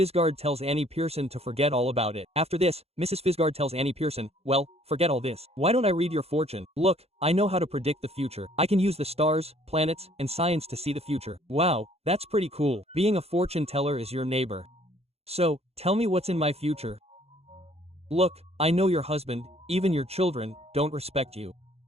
tells Annie Pearson to forget all about it. After this, Mrs. Fisgard tells Annie Pearson, well, forget all this. Why don't I read your fortune? Look, I know how to predict the future. I can use the stars, planets, and science to see the future. Wow, that's pretty cool. Being a fortune teller is your neighbor. So, tell me what's in my future. Look, I know your husband, even your children, don't respect you.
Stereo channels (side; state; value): left; late; 0.30 ms